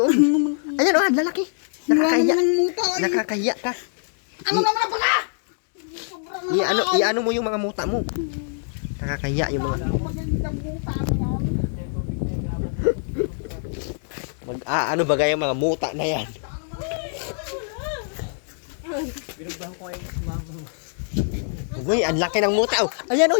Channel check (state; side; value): silent; right; digital silence